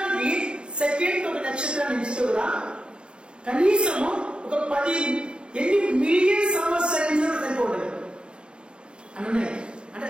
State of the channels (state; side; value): late; left; 0.052 ms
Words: సెకండ్ ఒక నక్షత్రాన్ని ఎంచితే కూడా కనీసము ఒక 10 మిలియన్ సంవత్సరాలు సరిపోతుంది అని. అంటే